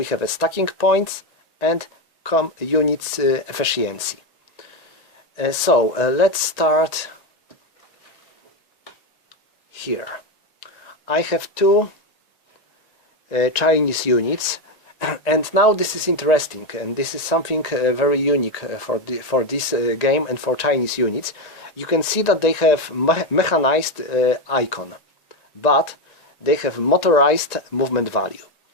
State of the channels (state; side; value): late; right; 1.9 ms